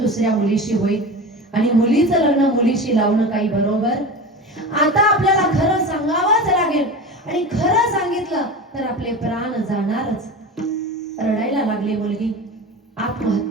मुलीशी होईल आणि मुलीचं लग्न मुलीशी लावणं काही बरोबर. आता आपल्याला खरं सांगावंच लागेल आणि खरं सांगितलं तर आपले प्राण जाणारच. रडायला लागली मुलगी.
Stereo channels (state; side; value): normal; both; correlation 0.29